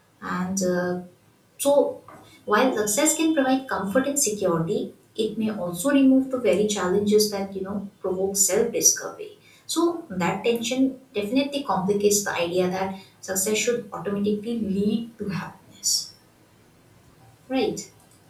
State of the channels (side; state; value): both; identical; correlation 1.00